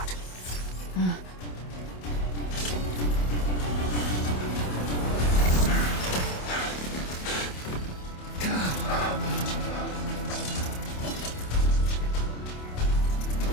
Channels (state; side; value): late; right; 27 ms